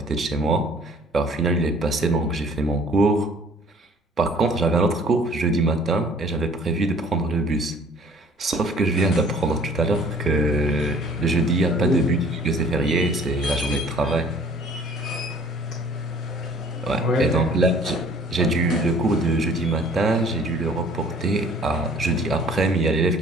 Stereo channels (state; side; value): normal; both; correlation 0.54